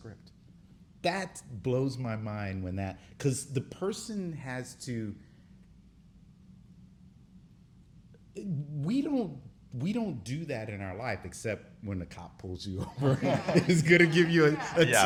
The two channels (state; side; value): identical; both; correlation 1.00